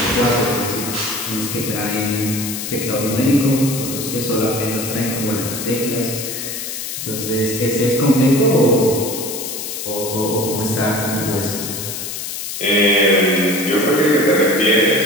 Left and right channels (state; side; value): noise; left; hiss, 6 dB below the sound